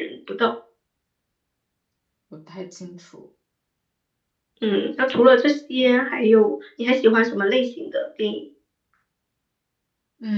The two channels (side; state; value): both; identical; correlation 1.00